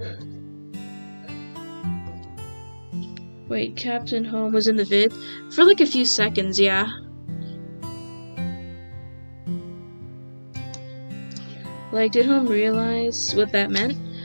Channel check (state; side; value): inverted; both; correlation -1.00